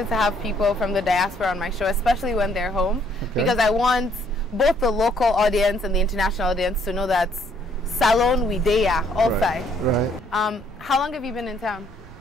to have people from the diaspora on my show, especially when they're home, because I want both the local audience and the international audience to know that Salon Widea, all five. Right. How long have you been in town?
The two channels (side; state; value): both; normal; correlation 0.66